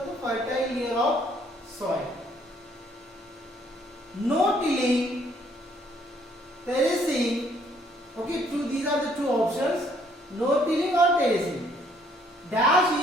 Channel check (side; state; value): both; normal; correlation 0.65